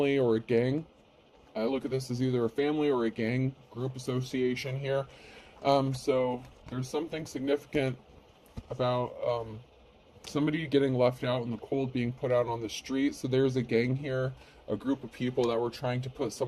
or a gang. I look at this as either a family or a gang group association here. So there's something significant about somebody getting left out in the cold, being put out on the street. So there's a gang here, a group of people that were trying to put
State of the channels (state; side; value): identical; both; correlation 1.00